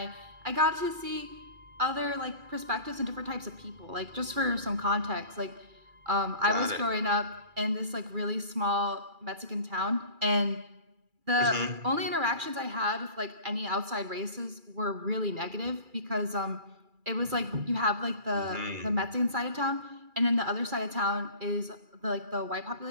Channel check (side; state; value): left; late; 2.3 ms